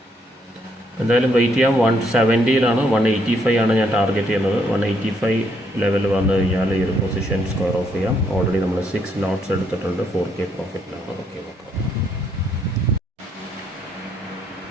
എന്തായാലും വെയിറ്റ് ചെയ്യാം. 170 185 ആണ് ഞാൻ ടാർഗറ്റ് ചെയ്യുന്നത്. 185 ലെവൽ വന്നു കഴിഞ്ഞാൽ ഈ ഒരു പൊസിഷൻ സ്ക്വയർ ഓഫ് ചെയ്യാം. ഓൾറെഡി നമ്മൾ 6 ലോട്ട്സ് എടുത്തിട്ടുണ്ട്. 4K പ്രോഫിറ്റിലാണ്. ഓക്കെ, നോക്കാം.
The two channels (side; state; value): both; normal; correlation 0.72